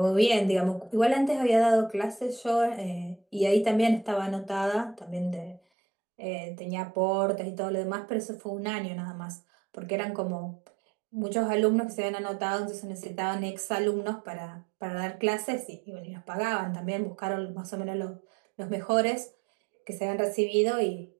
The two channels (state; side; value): drops out; left; at 5.6 s